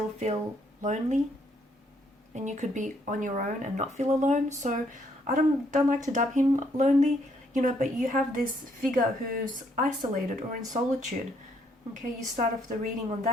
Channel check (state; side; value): normal; both; correlation 0.70